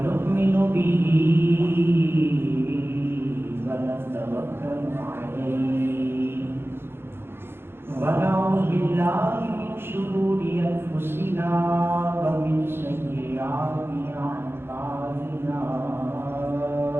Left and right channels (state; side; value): late; left; 0.11 ms